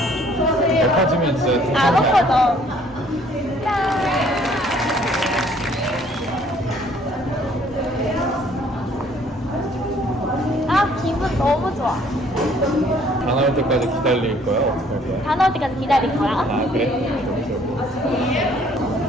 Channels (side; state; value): both; normal; correlation 0.60